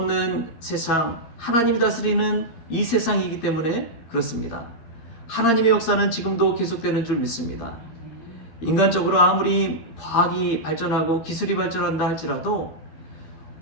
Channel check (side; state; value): right; late; 13 ms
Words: 세상, 하나님이 다스리는 이 세상이기 때문에 그렇습니다. 하나님의 역사는 지금도 계속되는 줄 믿습니다. 인간적으로 아무리 과학이 발전하고 기술이 발전한다 할지라도